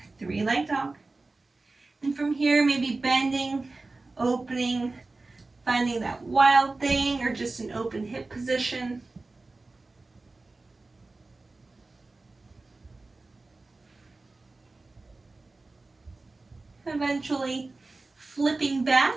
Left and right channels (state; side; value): quieter; left; 3.4 dB